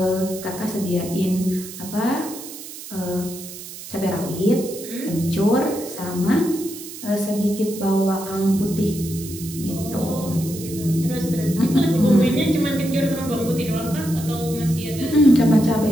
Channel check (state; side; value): noise; right; hiss, 13 dB below the sound